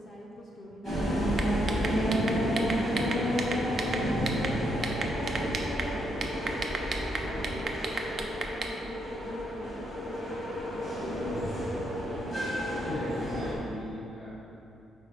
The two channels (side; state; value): both; normal; correlation 0.77